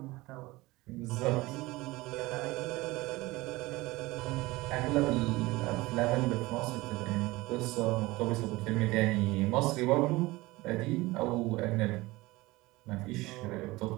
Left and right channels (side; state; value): left; quieter; 20.7 dB